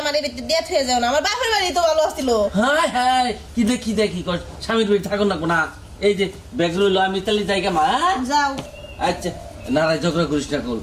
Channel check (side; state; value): both; identical; correlation 1.00